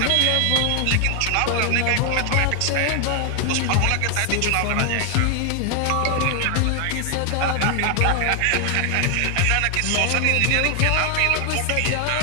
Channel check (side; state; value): both; different; correlation 0.00